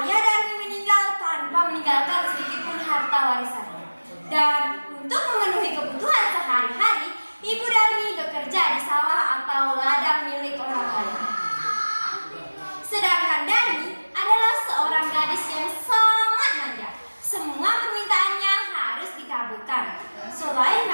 Darmi meninggal tanpa meninggalkan sedikit pun harta warisannya. Dan untuk memenuhi kebutuhan sehari-hari, Ibu Darmi bekerja di sawah atau ladang milik orang lain. Sedangkan Darmi adalah seorang gadis yang sangat manja. Semua permintaannya harus dikabulkan. Selain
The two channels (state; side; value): inverted; both; correlation -1.00